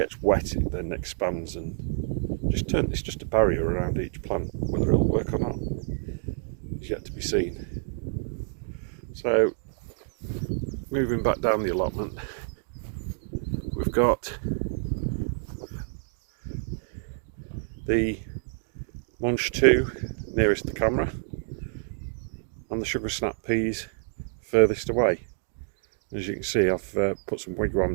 wet, it then expands and it's just a barrier around each plant. Whether it'll work or not is yet to be seen. So moving back down the allotment, we've got the Munch 2 nearest the camera, and the sugar snap peas furthest away. As you can see, I've put some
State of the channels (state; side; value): silent; left; digital silence